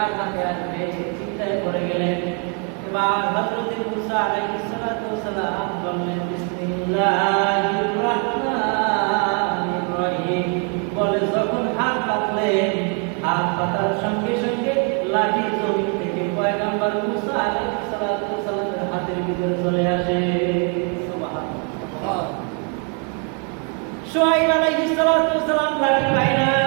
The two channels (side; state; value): left; quieter; 39.2 dB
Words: হাতে আসবে চিন্তায় পড়ে গেলেন। এবার হযরত মুসা আলাইহিস সালাতু ওয়াস সালাম বললেন, বিসমিল্লাহির রাহমানির রহিম বলে যখন হাত পাতলেন, হাত পাতার সঙ্গে সঙ্গে লাঠি জমিন থেকে পয়গম্বর মুসা আলাইহিস সালাতু ওয়াস সালামের হাতের ভিতরে চলে আসে। সুবহানাল্লাহ। শুআয়ব আলাইহিস সালাতু ওয়াস সালাম লাঠি পায় না,